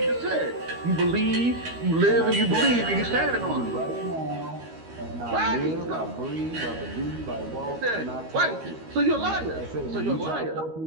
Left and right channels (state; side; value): late; left; 13 ms